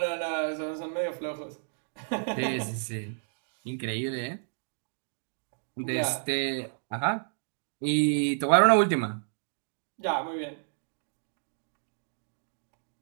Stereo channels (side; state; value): left; silent; digital silence